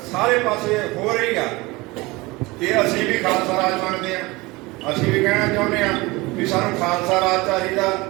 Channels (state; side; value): quieter; left; 22.6 dB